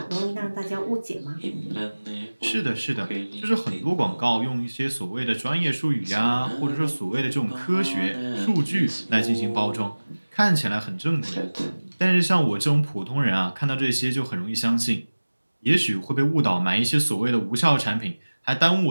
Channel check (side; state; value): both; inverted; correlation -1.00